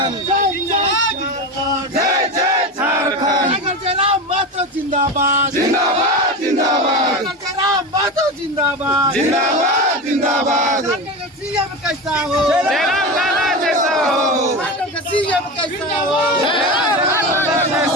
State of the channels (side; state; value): both; normal; correlation 0.23